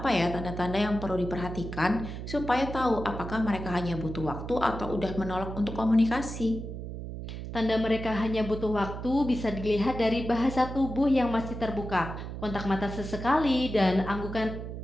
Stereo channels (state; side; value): noise; right; hum, 8 dB below the sound